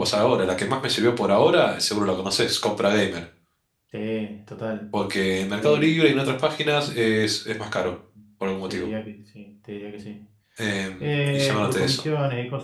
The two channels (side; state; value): both; identical; correlation 1.00